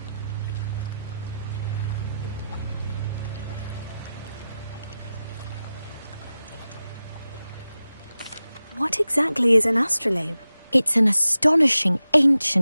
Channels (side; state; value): both; inverted; correlation -0.93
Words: What exactly is an astrolabe? It's an astonishing